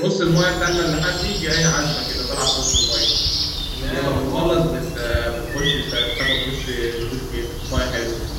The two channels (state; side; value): identical; both; correlation 1.00